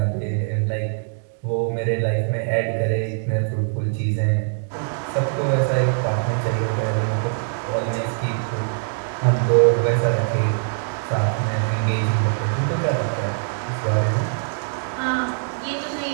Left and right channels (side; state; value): left; silent; digital silence